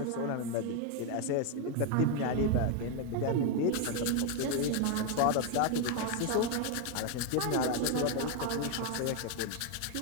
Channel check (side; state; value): both; different; correlation 0.01